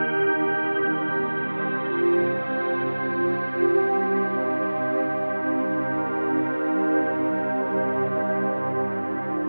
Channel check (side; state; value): both; inverted; correlation -1.00